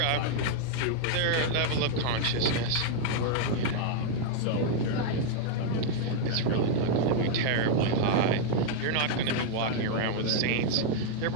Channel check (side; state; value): both; different; correlation -0.01